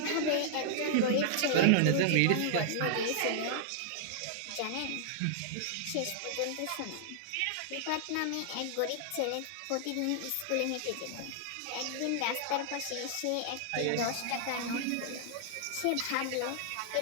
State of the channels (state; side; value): different; both; correlation -0.01